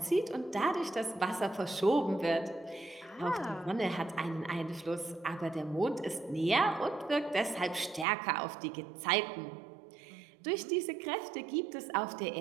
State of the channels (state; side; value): drops out; left; at 8.1 s